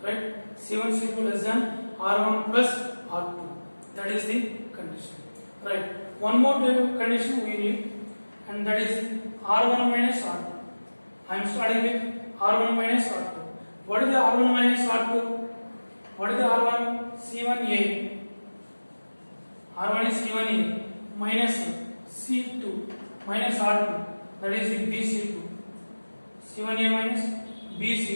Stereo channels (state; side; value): inverted; both; correlation -1.00